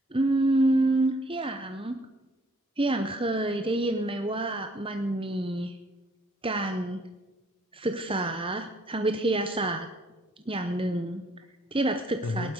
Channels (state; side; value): normal; both; correlation 0.63